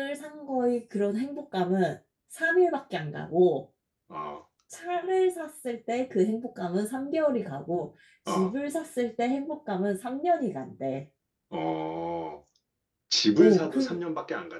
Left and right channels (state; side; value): identical; both; correlation 1.00